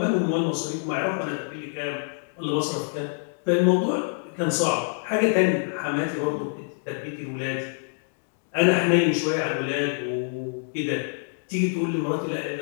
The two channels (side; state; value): right; silent; digital silence